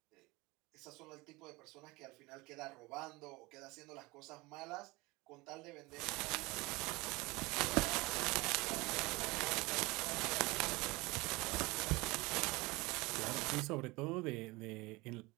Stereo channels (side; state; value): left; quieter; 23.1 dB